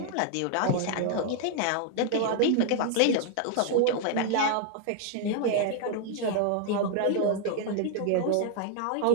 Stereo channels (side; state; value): both; different; correlation 0.00